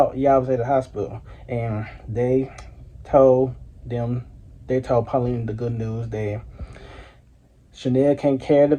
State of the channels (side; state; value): both; identical; correlation 1.00